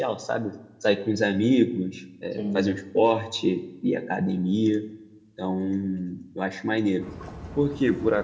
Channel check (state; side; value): identical; both; correlation 1.00